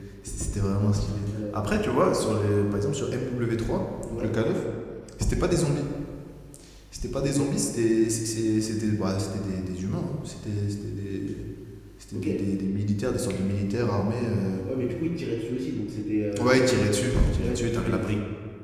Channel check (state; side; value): identical; both; correlation 1.00